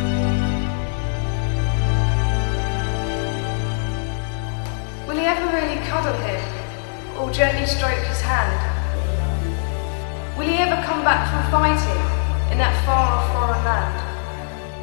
Will he ever really cuddle him, or gently stroke his hand? Will he ever come back from fighting in that far-off foreign land?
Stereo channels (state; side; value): silent; right; 65 dB below the other